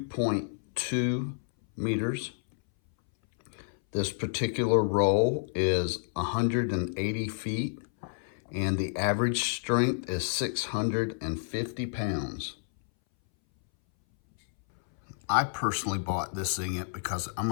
meters. This particular roll is 180 feet, and the average strength is 650 pounds. I personally bought this Zing-It because I'm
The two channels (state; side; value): silent; right; 58 dB below the other